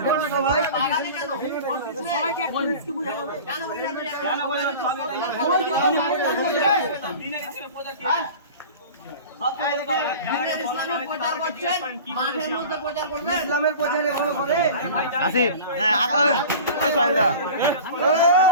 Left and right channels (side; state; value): both; inverted; correlation -0.37